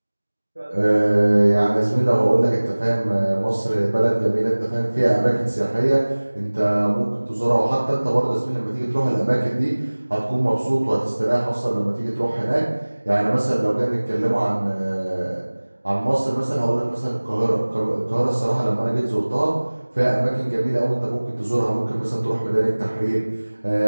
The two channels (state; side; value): inverted; both; correlation -1.00